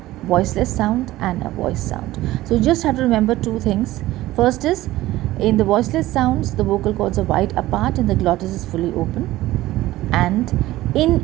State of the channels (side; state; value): left; quieter; 16.4 dB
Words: voiceless sound and a voice sound. So you just have to remember two things. First is, in the voiceless sounds the vocal cords are wide apart and the glottis is fully open, and